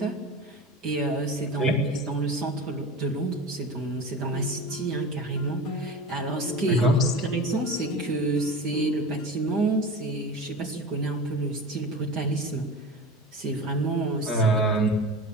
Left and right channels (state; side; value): normal; both; correlation 0.32